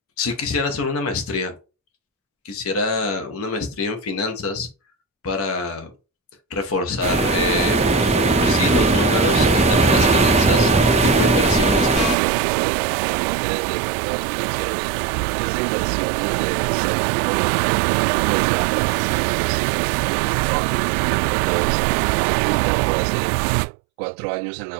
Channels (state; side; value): drops out; left; at 12.2 s